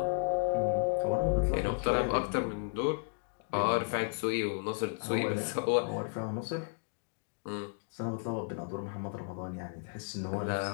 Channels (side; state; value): right; silent; digital silence